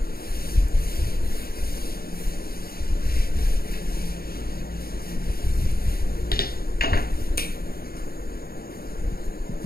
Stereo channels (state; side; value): late; right; 0.44 ms